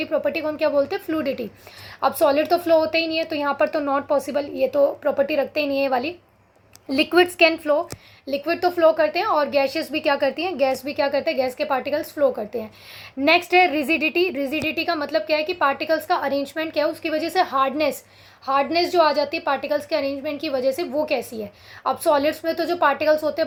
प्रॉपर्टी को हम क्या बोलते हैं, फ्लूइडिटी। अब सॉलिड तो फ्लो होते ही नहीं है तो यहाँ पर तो नॉट पॉसिबल, ये तो प्रॉपर्टी रखते ही नहीं है ये वाली। लिक्विड्स कैन फ्लो, लिक्विड तो फ्लो करते हैं और गैसेस भी क्या करती हैं, गैस भी क्या करते हैं, गैस के पार्टिकल्स फ्लो करते हैं। नेक्स्ट है रिजिडिटी। रिजिडिटी का मतलब क्या है कि पार्टिकल्स का अरेंजमेंट क्या है, उसकी वजह से हार्डनेस, हार्डनेस जो आ जाती है पार्टिकल्स के अरेंजमेंट की वजह से, वो कैसी है। अब सॉलिड्स में तो जो पार्टिकल्स होते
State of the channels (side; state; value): both; identical; correlation 1.00